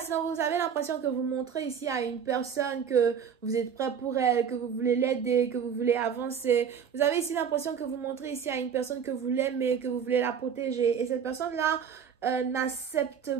vous avez l'impression que vous montrez ici à une personne que vous êtes prêt pour elle, que vous voulez l'aider, que vous voulez avancer. Vous avez ici l'impression que vous montrez ici à une personne que vous l'aimez, que vous voulez la protéger. Et cette personne-là n'accepte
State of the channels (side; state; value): left; quieter; 7.4 dB